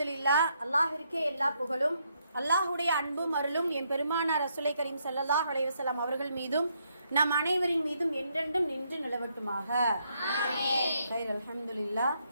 அல்லாஹ்விற்கே எல்லா புகழும். அல்லாஹ்வுடைய அன்பும் அருளும் என் பெருமானார் ரசூலை கரீம் ஸல்லல்லாஹு அலைஹி வஸல்லம் அவர்கள் மீதும் நம் அனைவரின் மீதும் என்றென்றும் நின்று நிலவட்டுமாக. ஆமீன். அல்ஹம்துலில்லாஹ்.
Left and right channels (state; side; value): inverted; both; correlation -0.75